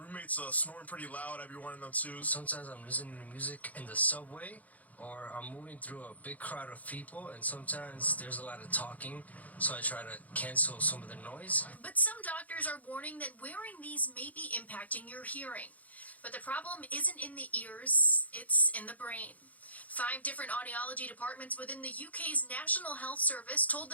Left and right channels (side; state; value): right; late; 0.075 ms